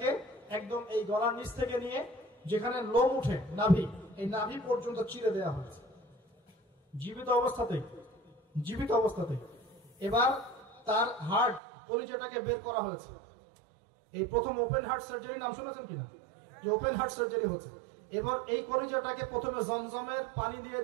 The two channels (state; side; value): drops out; left; at 11.6 s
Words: একদম এই গলার নিচ থেকে নিয়ে যেখানে লোম উঠে নাভি, এই নাভি পর্যন্ত চিরে দেওয়া হয়েছে জীবিত অবস্থাতে। এবার তার হার্ট, কলিজাটাকে বের করা হয়েছে। এই প্রথম ওপেন হার্ট সার্জারি নাম শুনেছেন কিনা? যে ওপেন হার্ট সার্জারি হচ্ছে। এবার এই কলিজাটাকে প্রথমে জমজমের পানি দিয়ে